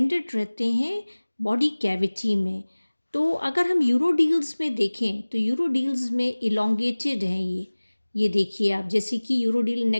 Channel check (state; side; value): inverted; both; correlation -1.00